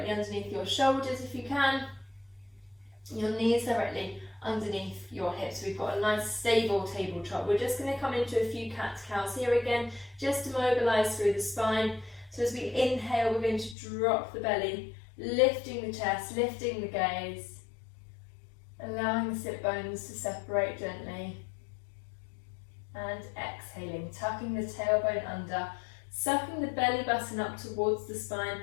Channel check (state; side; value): drops out; right; at 13.8 s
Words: underneath your shoulders if you can. Your knees directly underneath your hips. We've got a nice stable tabletop. We're just going to come into a few cat-cows here again, just to mobilise through the spine. So as we inhale, we're going to drop the belly, lifting the chest, lifting the gaze, allowing the sit bones to separate gently. And exhaling, tucking the tailbone under, sucking the belly button up towards the spine,